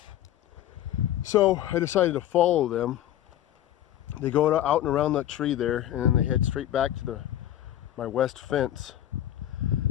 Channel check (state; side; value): quieter; right; 12.4 dB